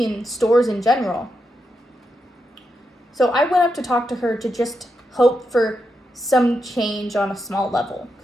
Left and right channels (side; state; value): both; normal; correlation 0.85